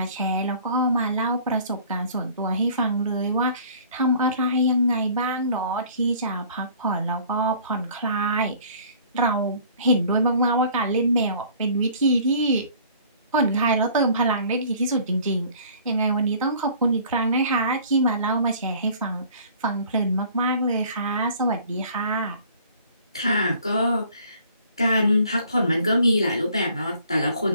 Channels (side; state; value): both; inverted; correlation -0.53